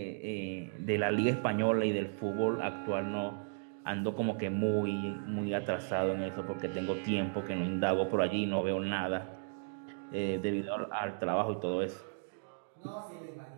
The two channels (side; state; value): left; silent; digital silence